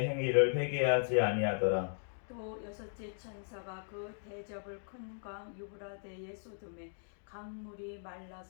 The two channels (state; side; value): silent; right; digital silence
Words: 행위를 회개하지 아니하더라. 또 여섯째 천사가 그 대접을 큰 강 유브라데에 쏟음에 강물이